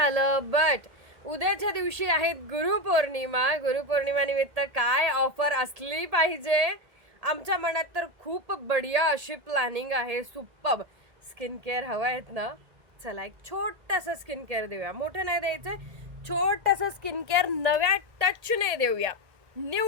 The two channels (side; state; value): left; late; 1.8 ms